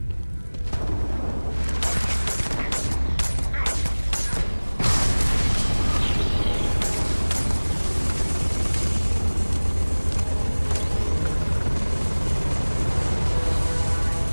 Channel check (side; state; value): both; inverted; correlation -1.00